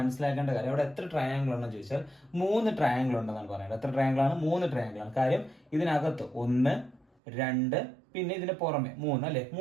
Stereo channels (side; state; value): left; drops out; at 7.1 s